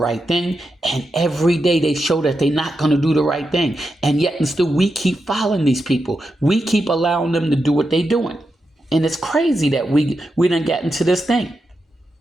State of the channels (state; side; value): normal; both; correlation 0.87